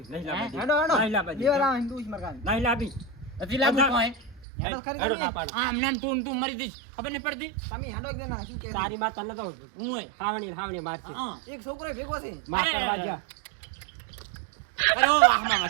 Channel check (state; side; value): drops out; left; at 4.5 s